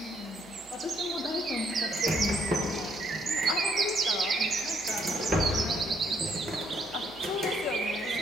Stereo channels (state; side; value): normal; both; correlation 0.69